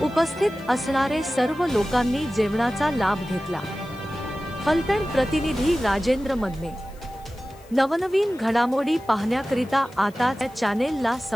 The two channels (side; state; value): left; noise; hiss, 27 dB below the sound